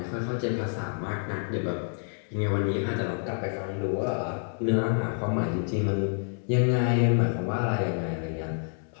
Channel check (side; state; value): right; silent; 59 dB below the other